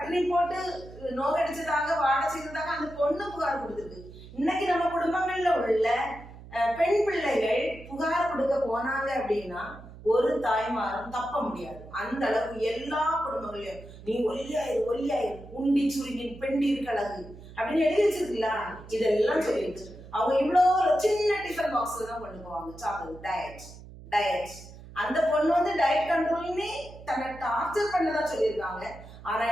போட்டு நோக்கடிச்சதாக வாட செய்ததாக அந்த பொண்ணு புகார் கொடுத்துருக்கு. இன்னைக்கு நம்ம குடும்பங்கள்ல உள்ள பெண் பிள்ளைகள் புகார் கொடுக்க போனாங்க அப்படின்னா ஒரு தாய்மாரும் தப்ப முடியாது. அந்த அளவுக்கு எல்லா குடும்பங்களையும் நீ ஒல்லியாயிரு உண்டி சுருங்கி பெண்டீர் கழகு அப்படின்னு எழுதி வச்சிருக்கீங்களா, இதெல்லாம் சொல்லிடுச்சு. அவங்க இவ்வளவு சின்ன டிஃபன் பாக்ஸ்ல தான் கொண்டு போவாங்க சாப்பிடுறது. டயட் அந்த பொண்ணு டயட் கண்ட்ரோல்னே தன்னை டார்ச்சர் பண்ணதா சொல்லியிருக்காங்க. ஆனா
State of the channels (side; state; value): right; noise; hum, 17 dB below the sound